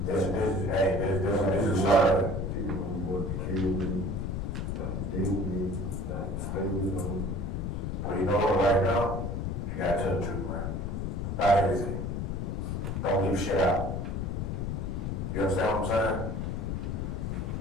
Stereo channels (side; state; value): left; noise; rumble, 2 dB below the sound